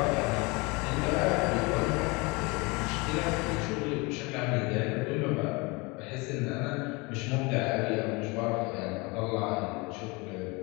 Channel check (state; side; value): quieter; right; 26.7 dB